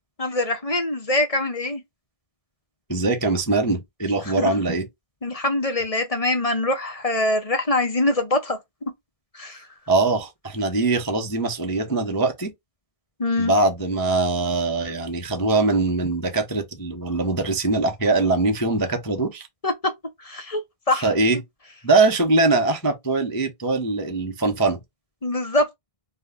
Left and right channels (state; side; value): late; right; 1.6 ms